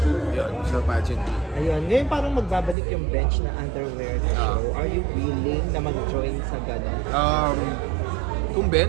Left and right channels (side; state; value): left; drops out; at 2.8 s